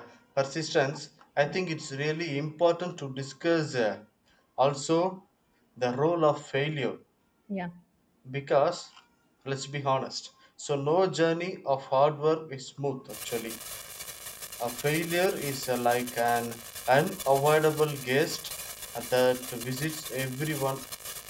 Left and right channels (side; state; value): both; identical; correlation 1.00